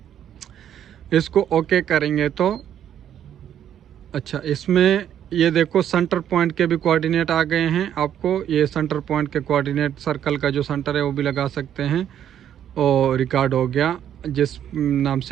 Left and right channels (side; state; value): left; quieter; 10.0 dB